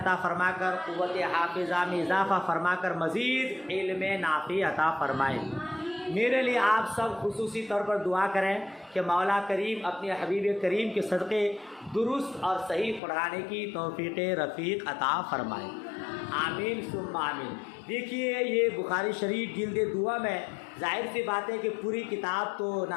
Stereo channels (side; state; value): right; drops out; at 13.0 s